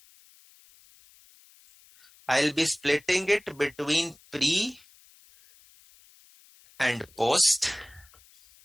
I'll be splitting it between pre and post.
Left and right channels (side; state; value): left; noise; hiss, 27 dB below the sound